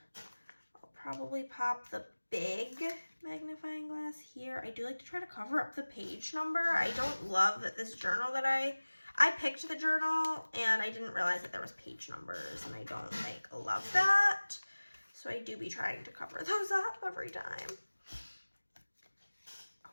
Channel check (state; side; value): inverted; both; correlation -1.00